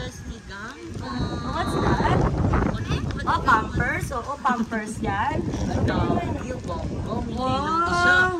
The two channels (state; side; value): identical; both; correlation 1.00